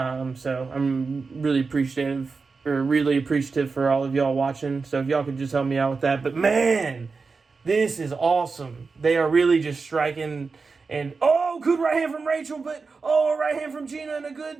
I'm really appreciative for all of y'all watching. So if y'all could just help me out with that. But man, this is awesome. They are really just striking. And, good right hand from Rachel, but, right hand from Gina, and a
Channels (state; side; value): quieter; left; 4.5 dB